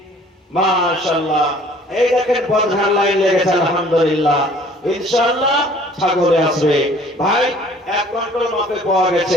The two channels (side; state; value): both; normal; correlation 0.54